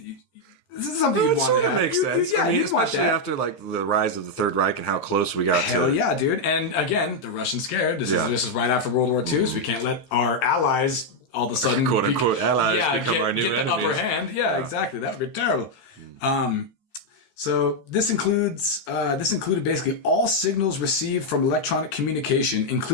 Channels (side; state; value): right; late; 15 ms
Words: this is something you'd want to have. Makes sense. Yeah, you'd want that. After, like, the rise of the Third Reich and how close we got to... Hell yeah, dude. And, again, the Russians scared. This is right after World War II, so we can't let our allies all of a sudden... quote-unquote allies become our new get enemies. The upper hand. Yeah, exactly. That would be terrible. So this included basically all signals received from electronic communication,